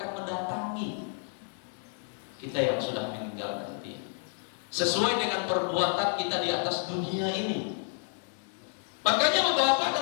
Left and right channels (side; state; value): right; silent; 56 dB below the other